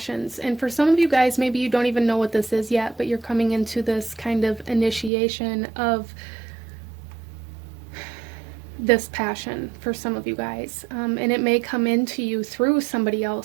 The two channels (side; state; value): left; drops out; at 5.1 s